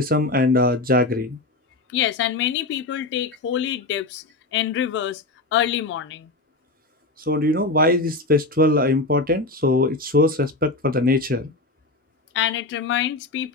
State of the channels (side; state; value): right; quieter; 3.1 dB